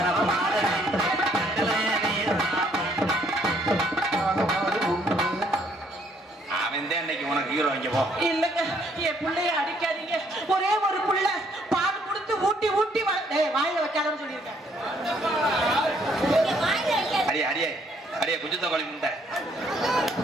மாடு ரெண்டு. அவன் தான் இன்னைக்கு உனக்கு ஹீரோ. இங்க போ. இல்லங்க என் புள்ளைய அடிக்காதீங்க. ஒரே ஒரு புள்ள பால் கொடுத்து ஊட்டி ஊட்டி வாயில வைக்காதன்னு சொல்லியிருக்கேன். அடியே அடியே அடியே குஞ்சத்த கோழி முண்டை.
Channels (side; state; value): both; normal; correlation 0.67